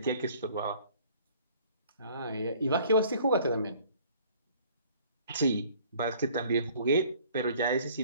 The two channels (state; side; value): inverted; both; correlation -0.55